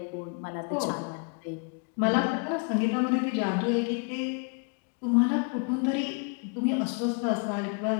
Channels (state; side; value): quieter; right; 37.6 dB